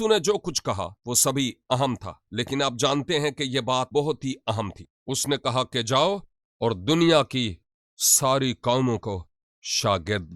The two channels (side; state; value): both; identical; correlation 1.00